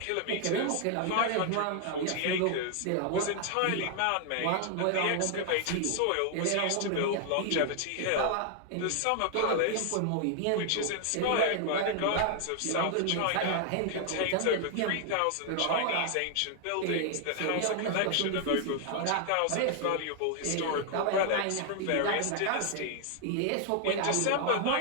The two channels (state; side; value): different; both; correlation 0.00